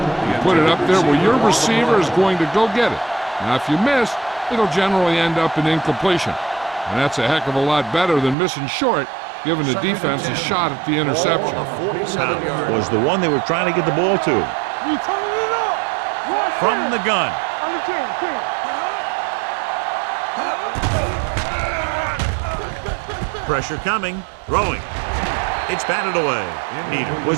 You put it up there where your receiver is going to go get it. Now, if you miss, it'll generally end up in incompletion. And that's a heck of a lot better than missing short, giving the defense a shot at the interception. That was the one they were trying to get the ball to. You turning it up. From the gun. On the 10. Pressure coming. Throwing. It's batted away. Peter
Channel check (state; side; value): drops out; left; at 8.3 s